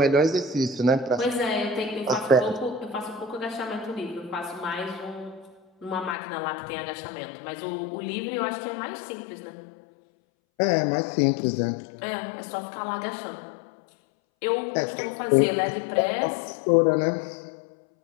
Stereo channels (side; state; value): right; drops out; at 6.2 s